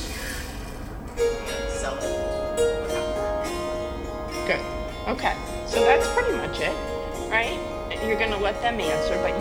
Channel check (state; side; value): identical; both; correlation 1.00